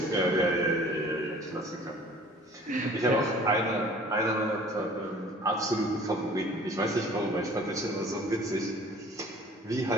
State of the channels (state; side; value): normal; both; correlation 0.50